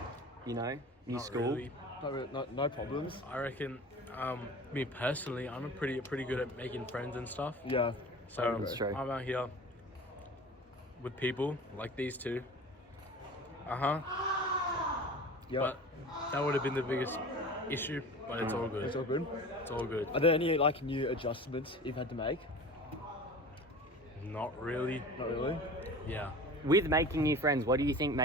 new Not school? really. No problems. I reckon, me personally, I'm pretty good at making friends and stuff. Yeah. So That's true. I'm out here with people like these two. Yeah. But that would have been the biggest issue. But it's all good. It's all good. It's all good. Are there any new adjustments you've had to make? Not really. Not really. Yeah. With making new friends, what do you think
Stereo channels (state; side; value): normal; both; correlation 0.38